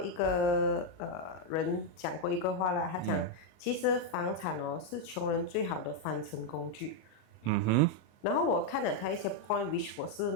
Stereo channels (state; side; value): late; right; 38 ms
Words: 个人讲过一个话啦，他讲，其实房产是穷人最好的翻身工具。然后我看了他一些 point，which 我是